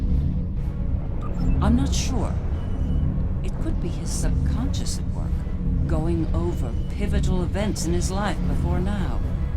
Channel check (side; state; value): both; identical; correlation 1.00